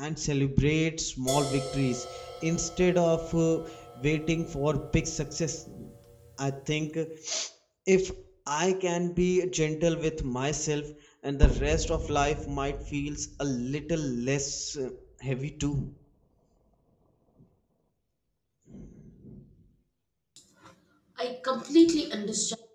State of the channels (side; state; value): both; identical; correlation 1.00